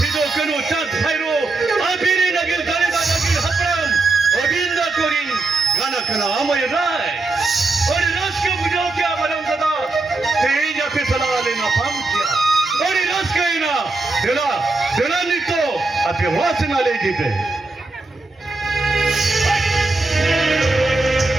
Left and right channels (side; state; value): left; quieter; 3.3 dB